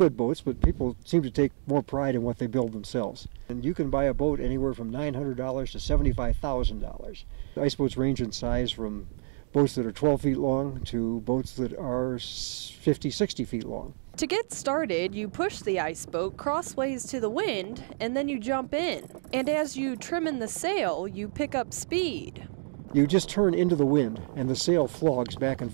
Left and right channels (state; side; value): silent; left; digital silence